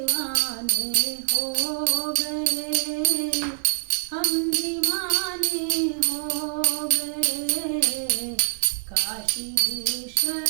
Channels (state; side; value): silent; left; 56 dB below the other